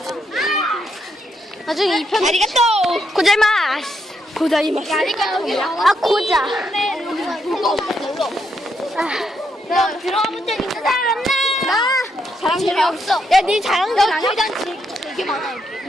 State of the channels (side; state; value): both; normal; correlation 0.79